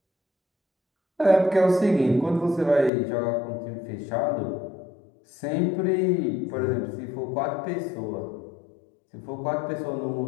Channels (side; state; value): right; drops out; at 2.9 s